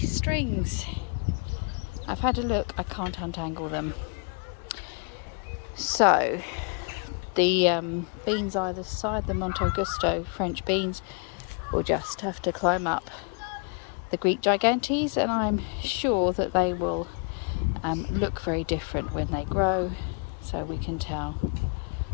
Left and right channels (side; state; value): right; quieter; 36.9 dB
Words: I've had a look, I can't untangle them. So the beans either side, the Monte Augusto French beans, will just have to climb up the Greek gigantes, and I'm sure that they will look very different when they grow, so we can tell